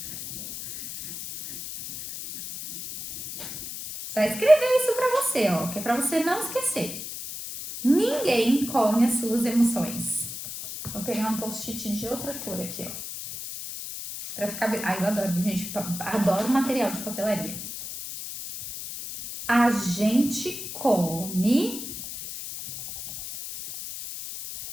Você vai escrever isso pra você, ó, que é pra você não esquecer. Ninguém come as suas emoções. Vou pegar um post-it de outra cor aqui, ó. Pra ficar bem. Ai, eu adoro, gente. Adoro material de papelaria. A gente come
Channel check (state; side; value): noise; left; hiss, 8 dB below the sound